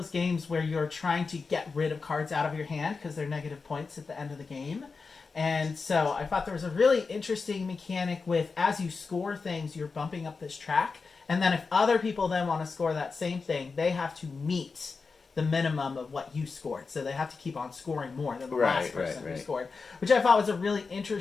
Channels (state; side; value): quieter; right; 4.6 dB